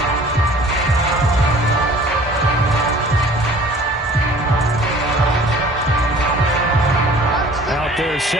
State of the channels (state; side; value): normal; both; correlation 0.49